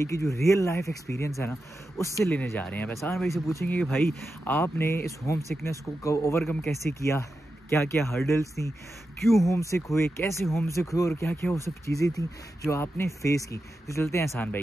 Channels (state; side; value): normal; both; correlation 0.90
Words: की जो रियल लाइफ एक्सपीरियंस है ना, उससे लेने जा रहे हैं। अब एहसान भाई से पूछेंगे कि भाई आपने इस होम सिकनेस को ओवरकम कैसे किया, क्या क्या हर्डल्स थी, क्यों होम सिक हुए, कैसे होम सिक हुए और क्या क्या वो सब चीज़ें थी जो आपने फेस की। तो चलते हैं एहसान